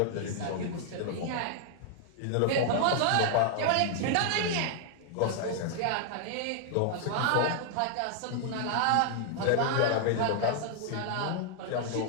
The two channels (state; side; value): different; both; correlation 0.00